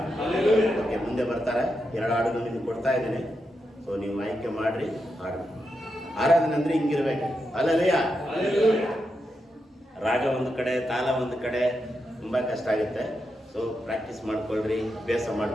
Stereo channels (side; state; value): both; normal; correlation 0.86